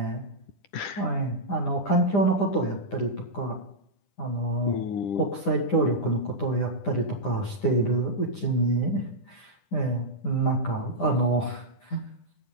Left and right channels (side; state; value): right; late; 10 ms